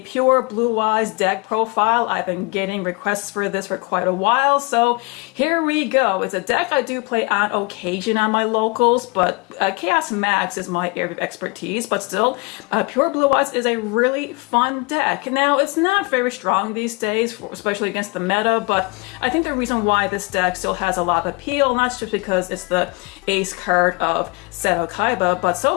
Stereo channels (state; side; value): quieter; right; 27.9 dB